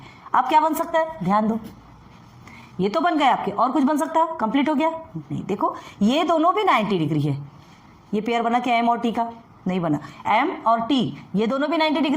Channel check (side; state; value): both; identical; correlation 1.00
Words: अब क्या बन सकता है, ध्यान दो, ये तो बन गए आपके, और कुछ बन सकता है, कंप्लीट हो गया नहीं। देखो ये दोनों भी 90 डिग्री है, ये पेयर बना क्या, M और T का, नहीं बना। M और T ये दोनों भी 90